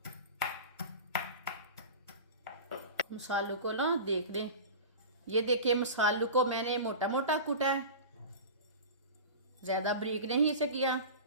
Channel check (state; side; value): inverted; both; correlation -0.32